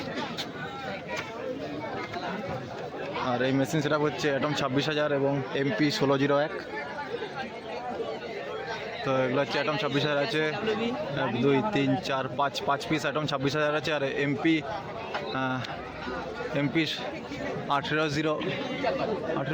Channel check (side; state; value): both; identical; correlation 1.00